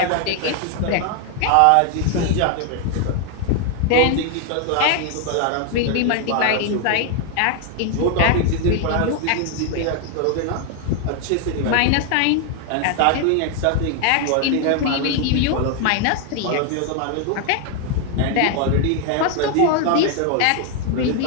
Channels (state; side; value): different; both; correlation 0.00